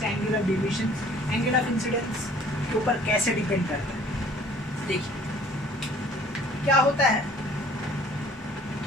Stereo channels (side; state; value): both; normal; correlation 0.54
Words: angle of deviation angle of incidence के ऊपर कैसे डिपेंड करता है। देखिए क्या होता है